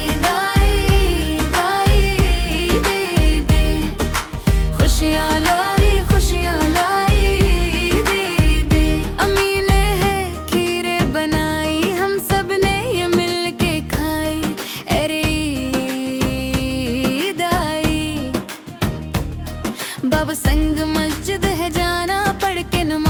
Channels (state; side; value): identical; both; correlation 1.00